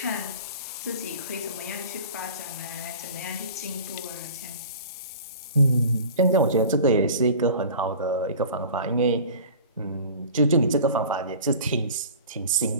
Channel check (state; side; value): inverted; both; correlation -0.40